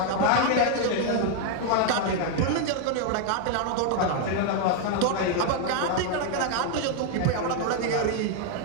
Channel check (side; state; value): both; different; correlation 0.00